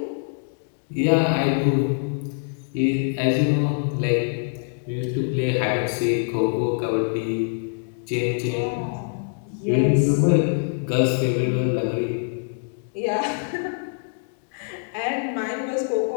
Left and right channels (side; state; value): right; silent; digital silence